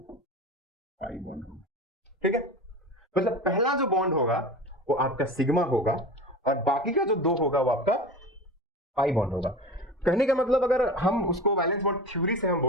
पाई बॉन्ड होगा, ठीक है। मतलब पहला जो बॉन्ड होगा वो आपका सिग्मा होगा और बाकी का जो दो होगा वो आपका पाई बॉन्ड होगा। कहने का मतलब अगर हम उसको वैलेंस बॉन्ड थ्योरी से हम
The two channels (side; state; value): both; normal; correlation 0.32